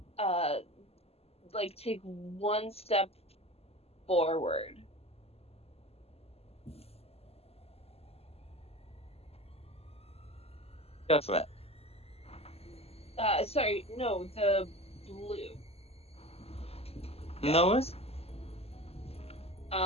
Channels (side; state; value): right; late; 0.29 ms